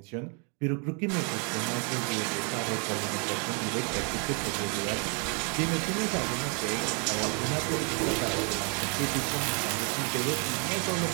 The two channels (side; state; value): left; quieter; 35.9 dB